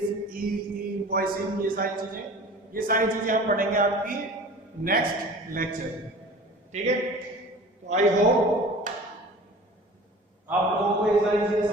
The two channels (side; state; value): both; normal; correlation 0.42